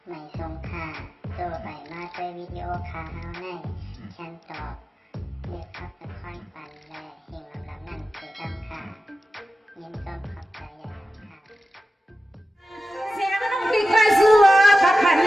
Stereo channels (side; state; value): both; normal; correlation 0.94